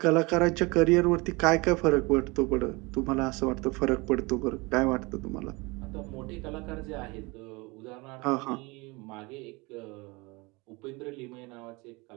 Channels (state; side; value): quieter; left; 25.6 dB